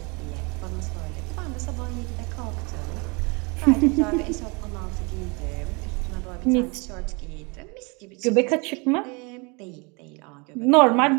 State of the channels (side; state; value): left; quieter; 30.0 dB